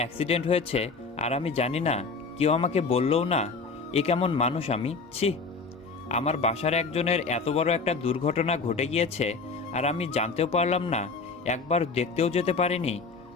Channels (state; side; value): quieter; right; 4.4 dB